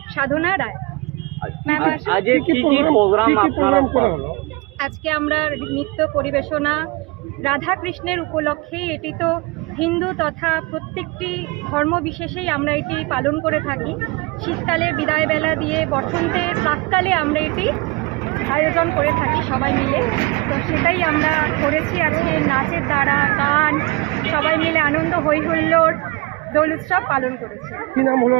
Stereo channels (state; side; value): quieter; left; 24.6 dB